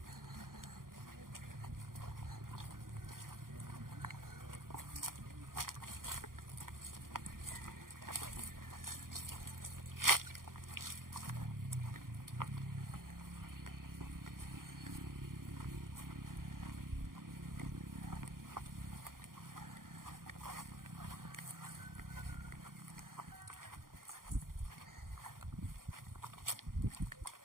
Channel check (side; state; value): left; late; 0.91 ms